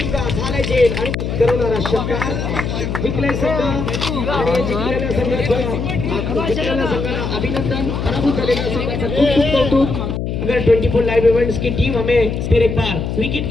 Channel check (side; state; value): left; noise; hum, 3 dB below the sound